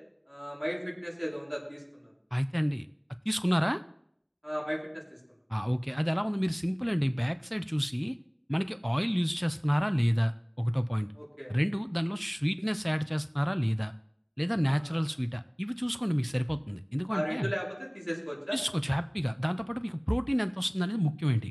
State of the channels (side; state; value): both; identical; correlation 1.00